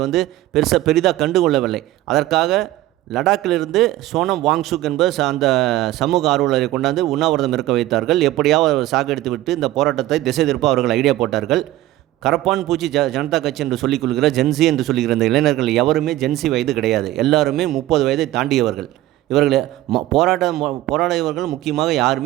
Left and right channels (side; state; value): left; quieter; 15.5 dB